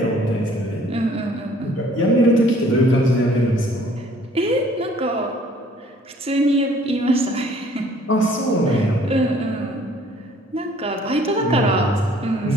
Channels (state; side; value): normal; both; correlation 0.57